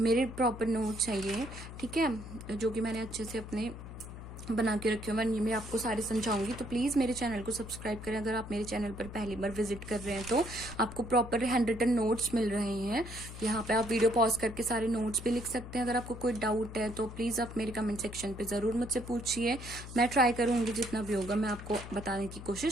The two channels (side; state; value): left; noise; hum, 12 dB below the sound